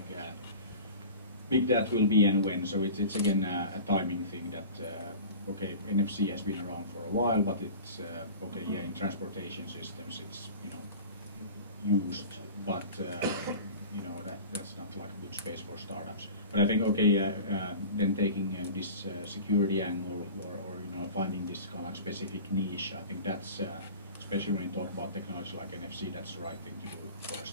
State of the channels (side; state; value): both; inverted; correlation -0.37